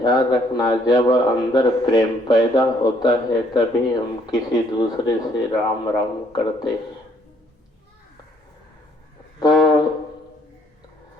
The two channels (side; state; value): both; normal; correlation 0.66